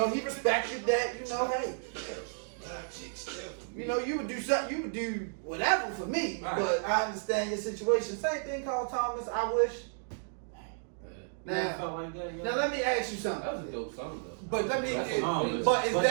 he respected that. You know, hey, you know, you would do something, you would do whatever for me. Right. But I understand your situation. Same thing, Carl Thomas. I wish. Now, felt like that, Now let me ask you something. That was a dope song though. But let me. That's a song, But is but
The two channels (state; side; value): silent; left; digital silence